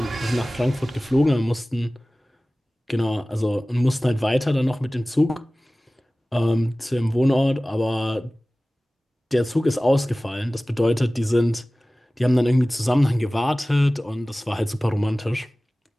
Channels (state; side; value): normal; both; correlation 0.98